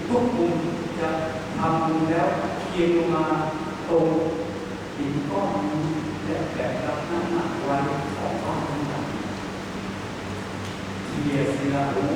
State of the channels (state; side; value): identical; both; correlation 1.00